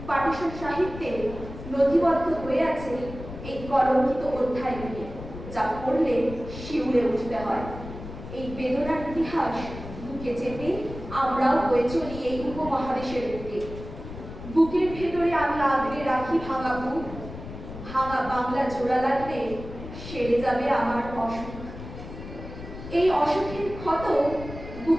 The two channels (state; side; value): noise; left; rumble, 12 dB below the sound